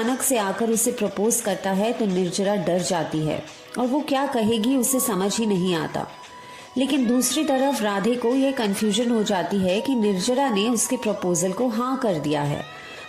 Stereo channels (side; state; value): both; identical; correlation 1.00